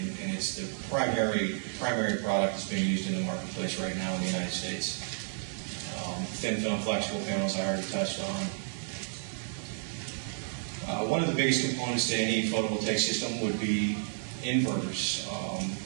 it's the primary product that's being used in the marketplace right now in the United States. Thin film flexible panels I already touched on. One of the biggest components to any photovoltaic system would be inverters.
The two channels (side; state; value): left; silent; digital silence